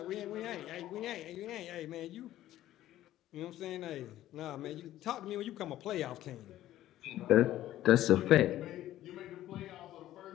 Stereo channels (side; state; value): right; quieter; 13.7 dB